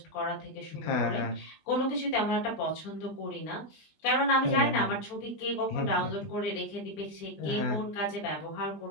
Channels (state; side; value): late; right; 20 ms